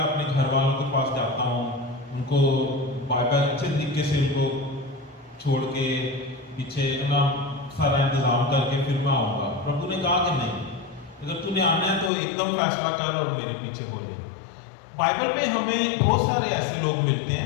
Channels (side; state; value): right; drops out; at 12.1 s